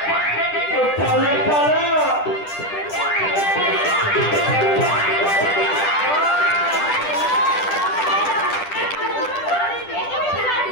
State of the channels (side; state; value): right; late; 10 ms